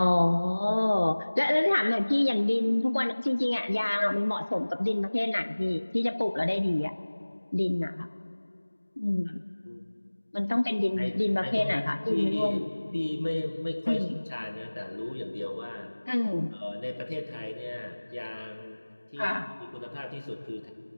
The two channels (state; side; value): inverted; both; correlation -1.00